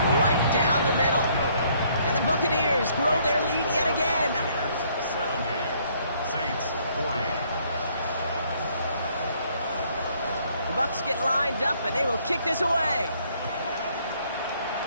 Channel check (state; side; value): inverted; both; correlation -0.65